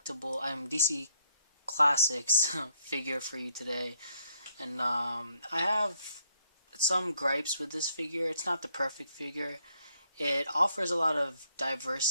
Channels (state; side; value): inverted; both; correlation -0.72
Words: Classics figure for you today, and I have some gripes with this figure. It's not the perfect figure. It offers a lot of